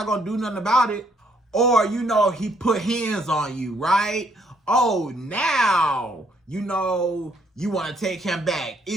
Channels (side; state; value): both; normal; correlation 0.69